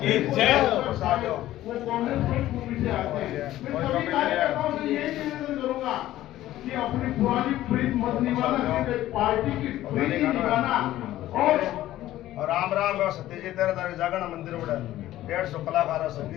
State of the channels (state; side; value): quieter; right; 14.4 dB